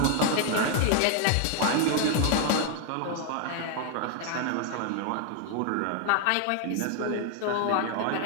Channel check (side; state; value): both; different; correlation 0.00